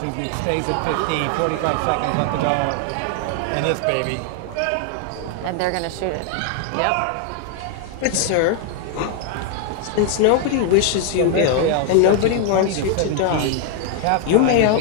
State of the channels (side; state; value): both; different; correlation 0.00